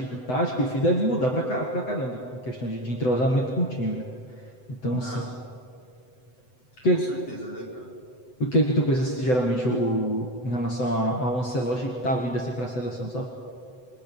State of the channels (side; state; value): right; late; 7.9 ms